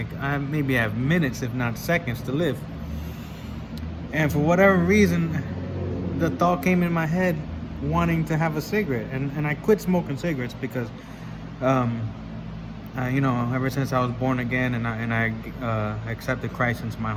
I maybe have minutes, if not seconds, to live. And for whatever reason, the thought came in my head wanting to have a cigarette, and I quit smoking cigarettes because ever since I was born again and I accepted Christ into my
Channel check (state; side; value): identical; both; correlation 1.00